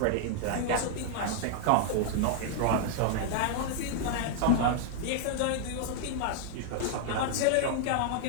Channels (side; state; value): both; different; correlation 0.00